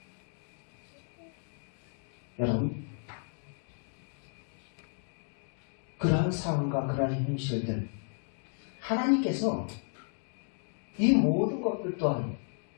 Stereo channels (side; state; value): right; silent; 55 dB below the other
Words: 여러분, 그러한 상황과 그러한 현실들, 하나님께서 이 모든 것들 또한